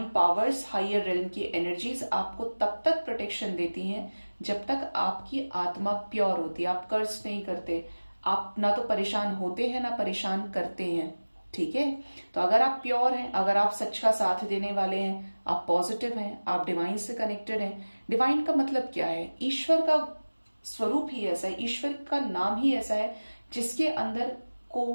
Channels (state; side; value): inverted; both; correlation -1.00